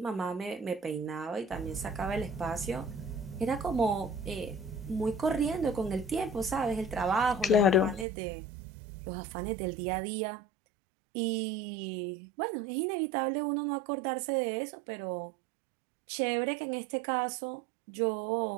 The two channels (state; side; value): drops out; left; at 8.1 s